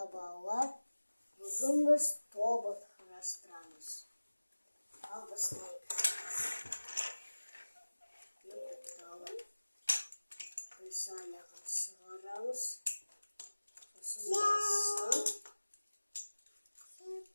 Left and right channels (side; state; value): both; inverted; correlation -1.00